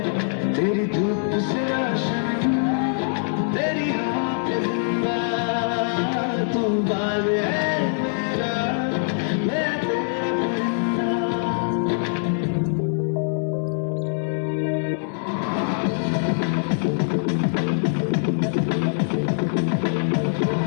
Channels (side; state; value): right; silent; digital silence